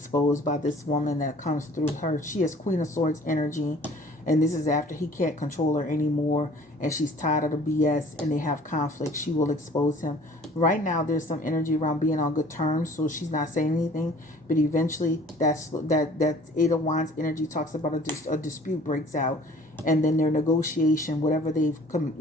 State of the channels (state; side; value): normal; both; correlation 0.51